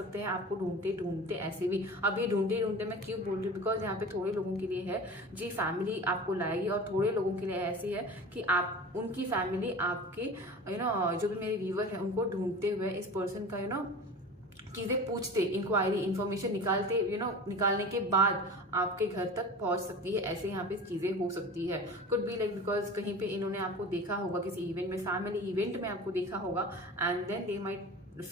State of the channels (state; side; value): normal; both; correlation 0.36